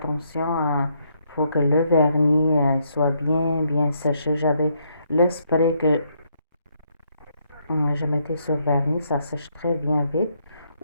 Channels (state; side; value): inverted; both; correlation -0.74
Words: Il faut que le vernis soit bien séché. J'avais le spray que je mettais sur le vernis, ça sèche très bien vite.